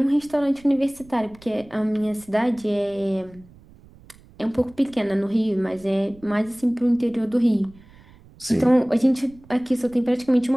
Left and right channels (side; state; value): right; noise; rumble, 25 dB below the sound